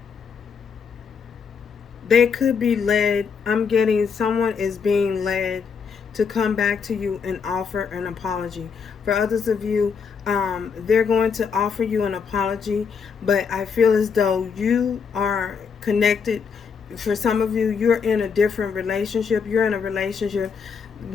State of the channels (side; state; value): right; quieter; 6.1 dB